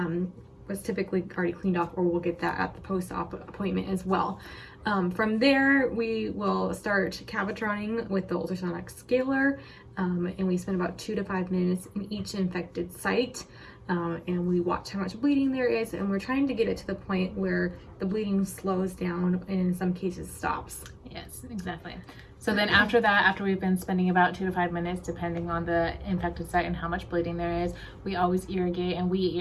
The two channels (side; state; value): both; identical; correlation 1.00